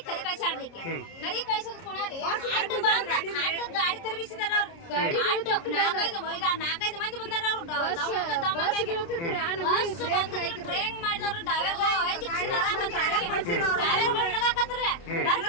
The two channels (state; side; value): late; right; 29 ms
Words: ಕರಿ ಕಳ್ಸಾಡ್ಲಿಕ್ಕೆ ಕರಿ ಕಳ್ಸೋದ್ ಕೊಣರಿ ಅಡ್ಡ ಬಂದ ಅಡ್ಡ ಗಾಡಿ ತರಬಿಸಿದಾರ ಅವ್ರು ನಾಲ್ಕೈದು ಮಂದಿ ಬಂದಾರ ಅವ್ರು ಬಸ್ ಬಂದ್ರಿ ಟ್ರೈನ್ ಮಾಡಿದವ್ರು ಡ್ರೈವರ್ಗಳು